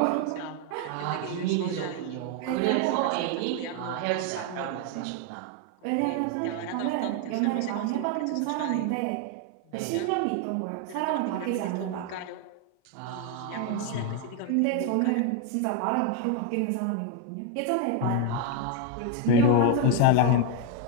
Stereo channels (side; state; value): both; different; correlation 0.01